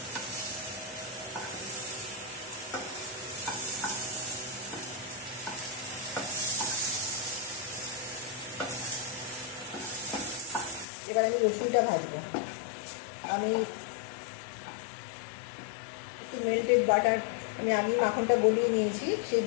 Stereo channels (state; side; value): drops out; right; at 10.9 s